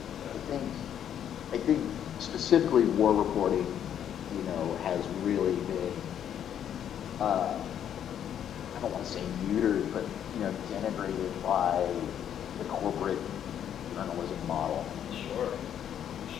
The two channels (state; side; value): quieter; right; 9.6 dB